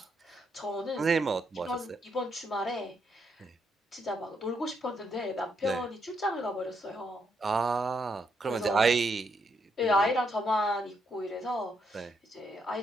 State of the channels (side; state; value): both; normal; correlation 0.77